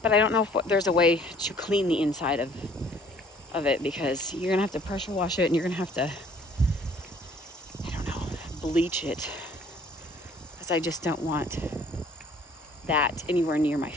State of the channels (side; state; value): both; normal; correlation 0.57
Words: I don't know if there's a way to clean the inside of it, because you're gonna have to pressure wash it, and you're gonna have to, I don't know, bleach it, because I just don't want that anywhere near my